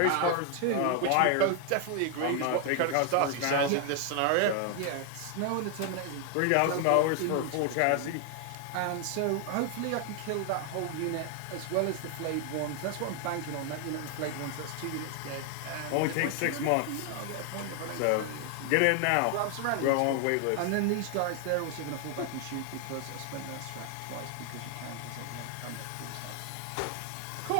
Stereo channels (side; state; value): both; different; correlation 0.00